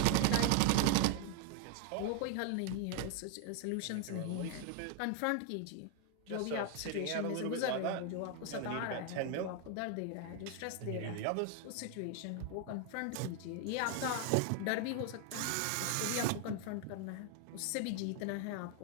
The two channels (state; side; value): different; both; correlation 0.01